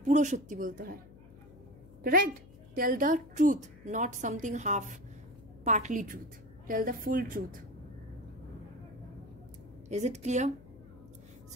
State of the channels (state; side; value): noise; left; hum, 21 dB below the sound